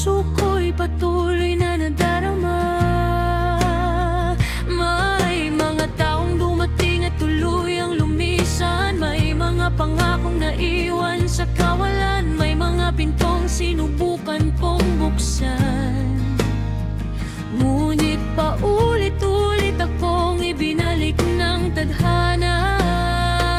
ko'y patuloy na nadarama. May mga taong dumating at tuluyang lumisan, may mga pangakong naiwan sa kawalan, may mga pintong sinubukan kong buksan. Ngunit paulit-ulit akong ibinalik ng tadhana.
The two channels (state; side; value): identical; both; correlation 1.00